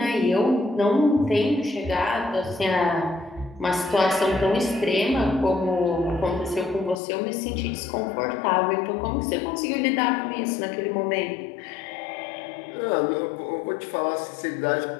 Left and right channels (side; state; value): right; drops out; at 7.0 s